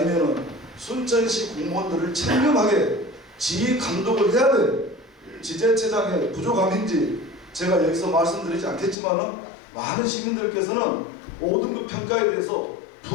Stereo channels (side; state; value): right; drops out; at 9.0 s